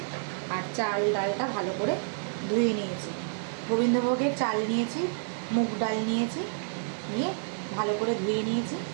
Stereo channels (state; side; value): silent; left; 56 dB below the other